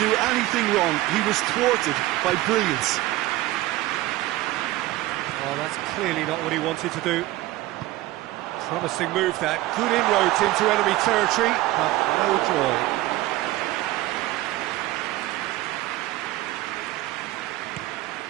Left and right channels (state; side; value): quieter; left; 17.0 dB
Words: anything wrong. He was thwarted by brilliance. Oh, that's clearly not what he wanted to do. Promising move that. Good inroads into enemy territory, but no joy.